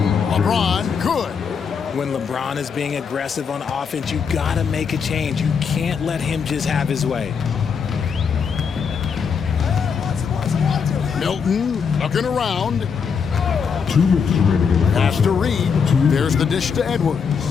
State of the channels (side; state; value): right; quieter; 6.3 dB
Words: LeBron, good. When LeBron is being aggressive on offense, you got to make a change. You can't let him just have his way. Milton looking around. Pass to Reed. There's the dish to Edwards.